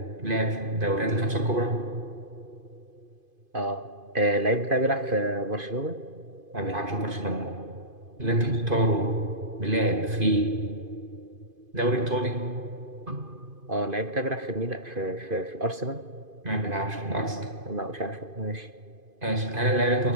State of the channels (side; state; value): left; late; 2.5 ms